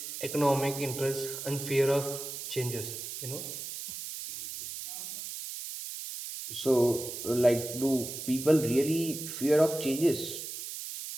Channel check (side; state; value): right; noise; hiss, 8 dB below the sound